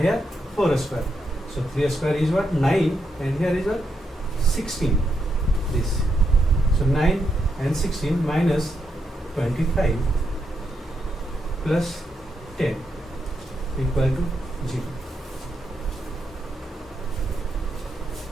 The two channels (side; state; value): both; normal; correlation 0.82